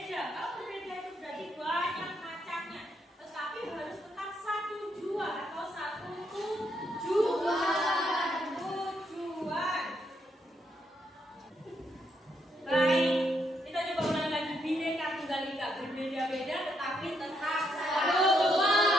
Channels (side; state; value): both; normal; correlation 0.77